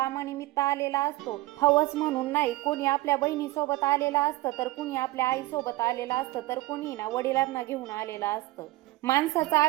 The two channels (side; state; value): left; quieter; 18.7 dB